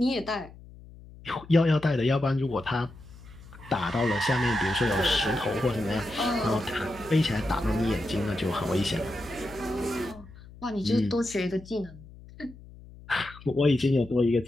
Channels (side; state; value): left; noise; hum, 19 dB below the sound